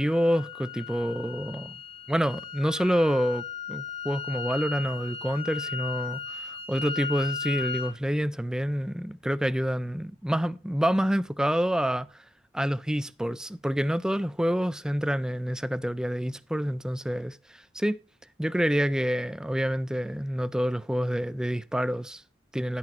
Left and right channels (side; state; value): both; normal; correlation 0.90